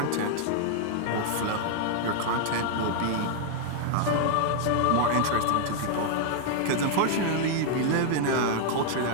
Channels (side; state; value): both; different; correlation 0.00